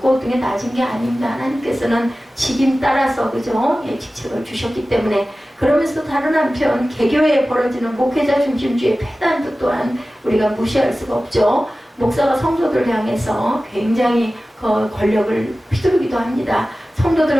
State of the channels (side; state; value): both; normal; correlation 0.96